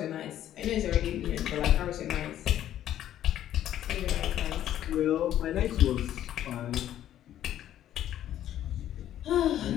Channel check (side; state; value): right; quieter; 11.8 dB